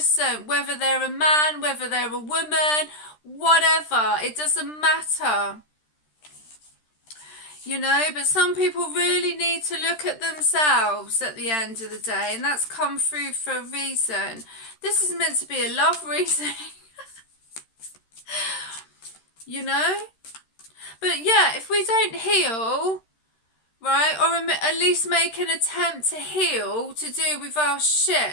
whether they're a man, whether they're a woman, whatever, it doesn't matter. You know, but some people really need to look at themselves at the end of the day, and that's come through for a reason. This is meant to be a love reading. You know? But yeah, if we don't heal, right, or at least make an attempt to heal to do with our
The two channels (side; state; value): right; late; 13 ms